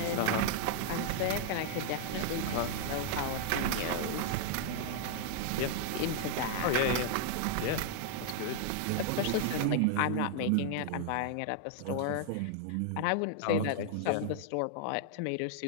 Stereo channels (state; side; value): different; both; correlation 0.00